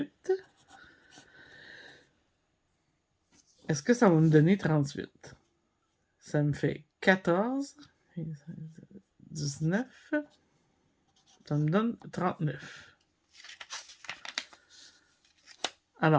est-ce que ça va me donner 38? Ça me fait 14, 19, ça me donne 39.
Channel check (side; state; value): both; identical; correlation 1.00